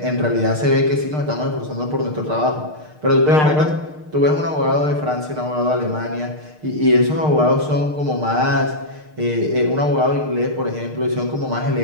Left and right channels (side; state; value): left; late; 6.6 ms